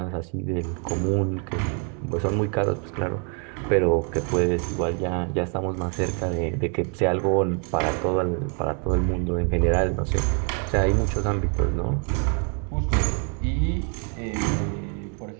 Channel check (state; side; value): quieter; left; 39.4 dB